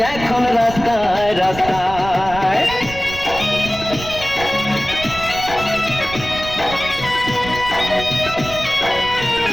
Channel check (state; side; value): noise; right; rumble, 12 dB below the sound